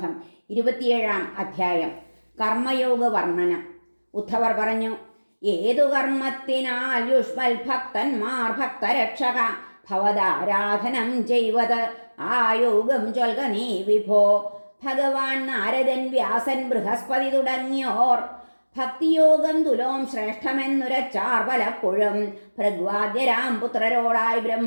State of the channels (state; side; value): inverted; both; correlation -1.00